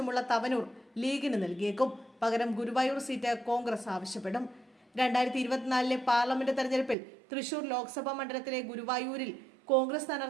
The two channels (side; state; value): left; drops out; at 7.0 s